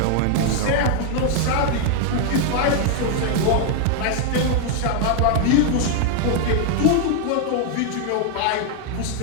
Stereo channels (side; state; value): both; different; correlation 0.00